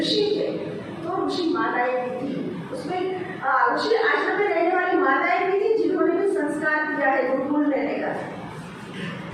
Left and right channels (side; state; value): both; identical; correlation 1.00